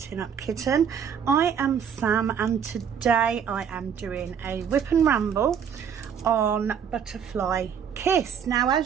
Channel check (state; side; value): quieter; left; 7.7 dB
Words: Up Kitten. I am Sam and today I am doing a whip and ramble on Butterfly Kiss. Now